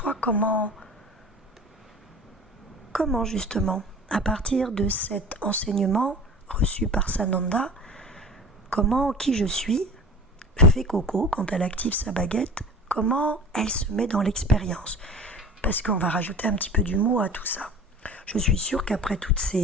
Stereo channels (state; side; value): normal; both; correlation 0.38